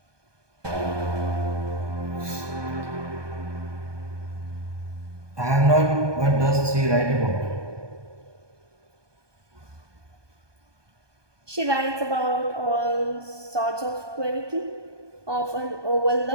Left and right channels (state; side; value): late; left; 1.2 ms